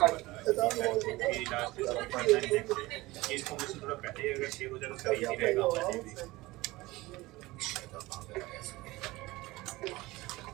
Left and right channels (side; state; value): left; quieter; 20.1 dB